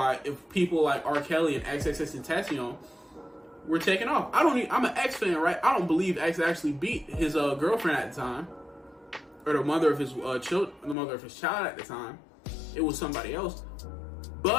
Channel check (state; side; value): drops out; right; at 11.0 s